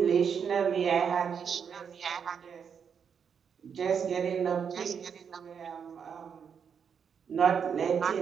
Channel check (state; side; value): quieter; left; 7.0 dB